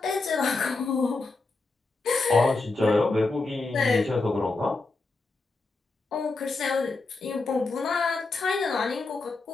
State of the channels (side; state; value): right; quieter; 3.5 dB